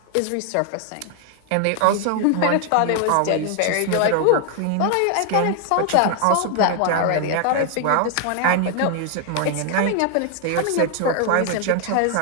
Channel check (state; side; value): different; both; correlation 0.00